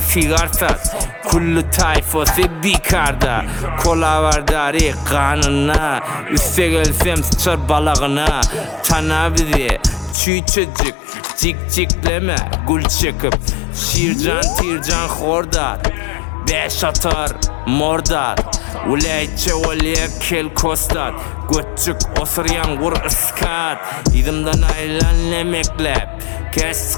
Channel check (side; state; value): right; drops out; at 10.2 s